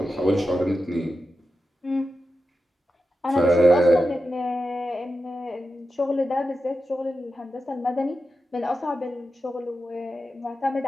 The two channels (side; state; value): both; normal; correlation 0.90